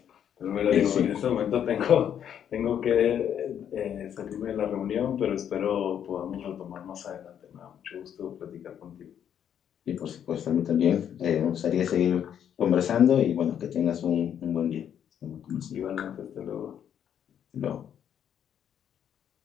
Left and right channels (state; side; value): quieter; right; 9.2 dB